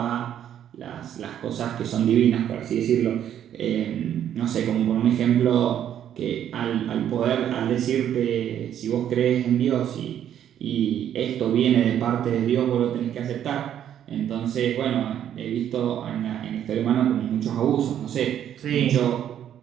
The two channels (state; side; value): quieter; left; 10.2 dB